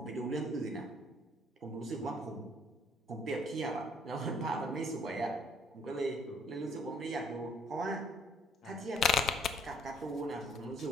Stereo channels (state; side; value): normal; both; correlation 0.64